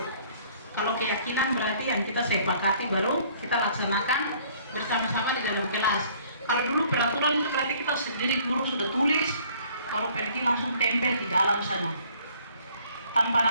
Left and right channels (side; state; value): both; inverted; correlation -0.57